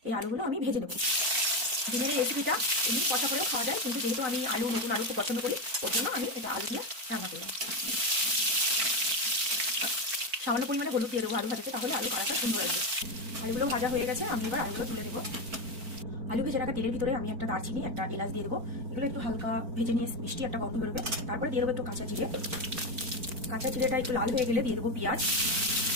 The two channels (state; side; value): late; left; 4.4 ms